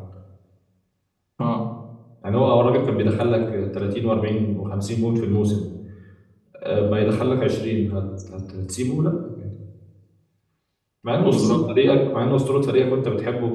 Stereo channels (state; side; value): identical; both; correlation 1.00